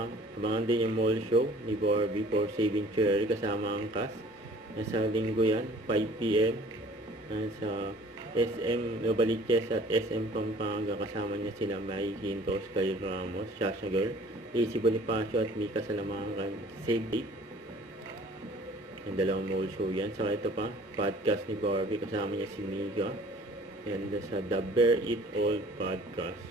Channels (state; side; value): normal; both; correlation 0.51